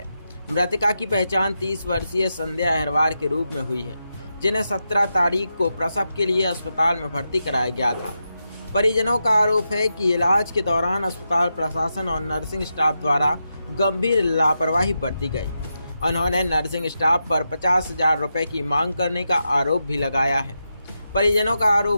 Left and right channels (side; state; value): both; inverted; correlation -0.87